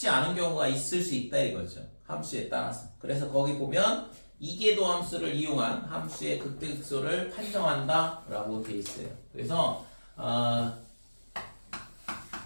않은 경우가 있을 수 있다 이거죠. 함수에 따라서. 그래서 거기 보면 이계도 함수를 이용한 함수의 극대 극소를 판정한다 라고 되어 있어요. 그래서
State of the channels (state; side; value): inverted; both; correlation -1.00